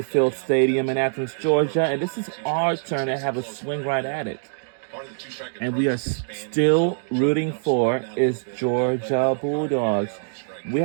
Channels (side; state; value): left; silent; digital silence